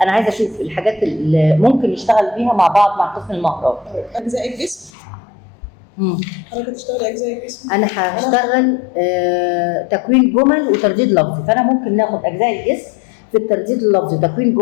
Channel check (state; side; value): drops out; right; at 4.9 s